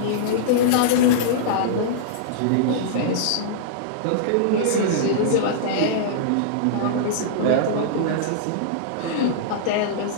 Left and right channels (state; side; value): different; both; correlation -0.02